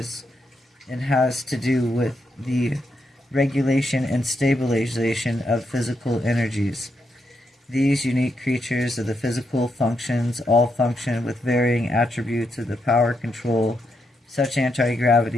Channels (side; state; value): both; normal; correlation 0.81